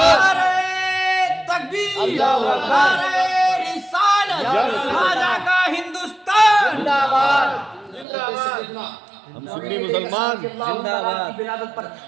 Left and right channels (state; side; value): drops out; left; at 8.1 s